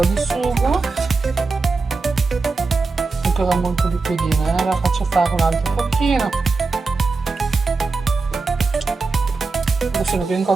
di sugo. Ancora molto liquidina, la faccio fare un altro pochino. Adesso sono ben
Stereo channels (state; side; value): quieter; left; 4.0 dB